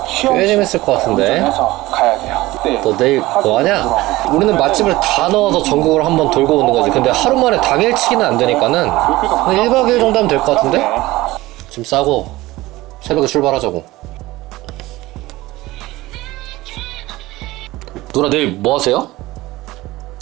꽤 재밌을 것 같은데. 운전해서 가야 돼요. 네. 너 내일 뭐 하냐? 우리는 맛집을 다 넣어서 전국을 한번 돌고 오는 거지. 근데 하루 만에 당일치기는 안 되니까는 한 1박 2일 정도 하면 될 것 같은데? 짐 싸고 새벽에 출발하자고. 누나 내일 뭐 하세요?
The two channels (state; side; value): quieter; left; 18.7 dB